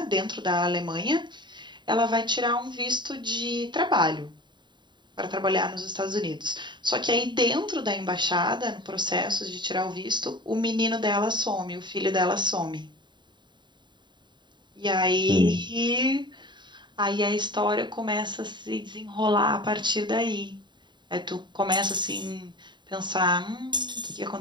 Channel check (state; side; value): late; left; 0.22 ms